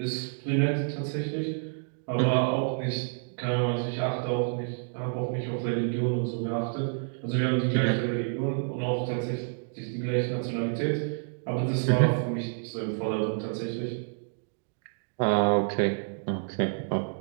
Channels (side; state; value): left; silent; digital silence